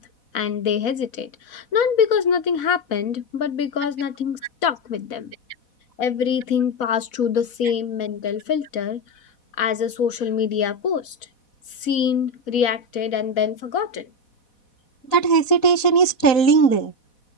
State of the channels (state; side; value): late; right; 4.1 ms